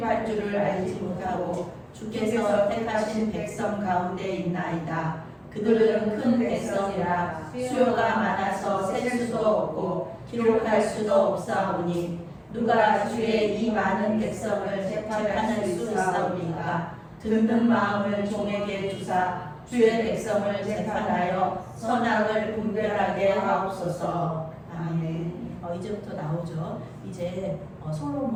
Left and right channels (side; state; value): both; identical; correlation 1.00